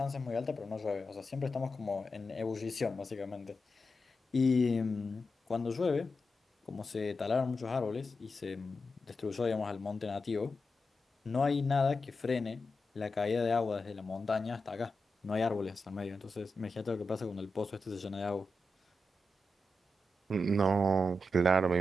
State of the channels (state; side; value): normal; both; correlation 0.89